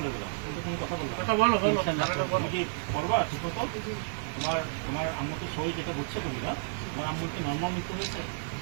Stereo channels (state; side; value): silent; left; digital silence